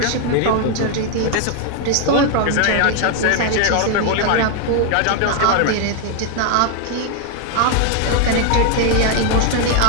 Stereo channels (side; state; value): both; different; correlation 0.00